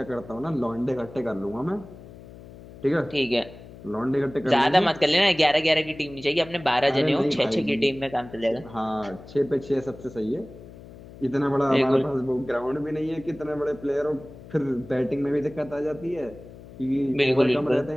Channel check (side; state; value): left; noise; hum, 18 dB below the sound